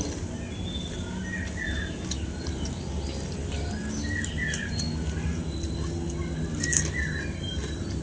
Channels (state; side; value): identical; both; correlation 1.00